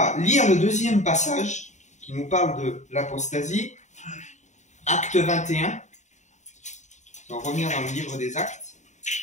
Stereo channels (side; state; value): right; late; 0.34 ms